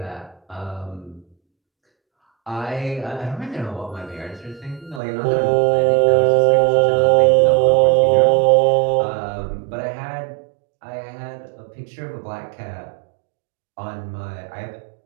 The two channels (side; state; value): left; drops out; at 5.0 s